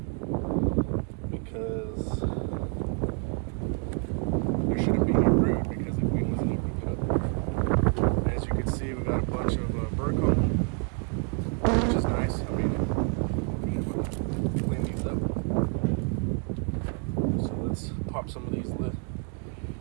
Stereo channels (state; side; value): quieter; left; 38.5 dB